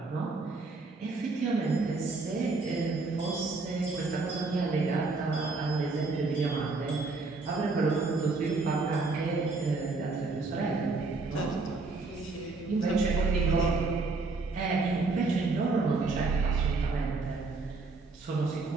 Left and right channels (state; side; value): quieter; left; 3.8 dB